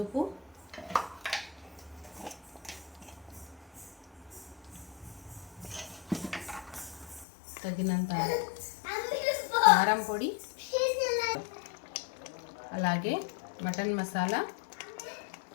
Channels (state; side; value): drops out; right; at 7.2 s